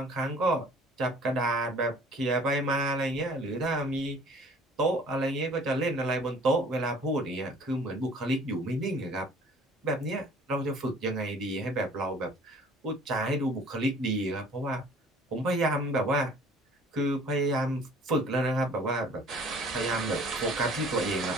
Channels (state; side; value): normal; both; correlation 0.52